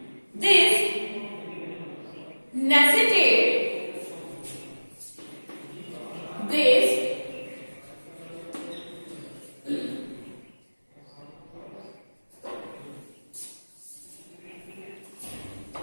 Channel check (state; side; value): inverted; both; correlation -1.00